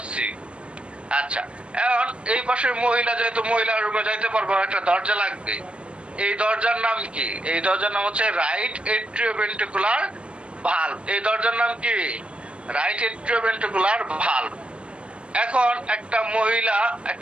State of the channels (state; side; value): late; left; 0.059 ms